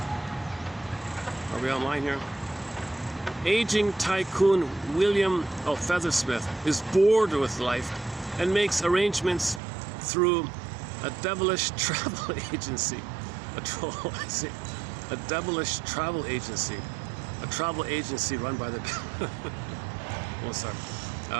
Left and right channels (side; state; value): left; drops out; at 9.6 s